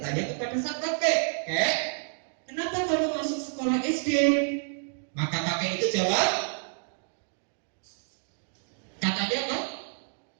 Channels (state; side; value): silent; left; digital silence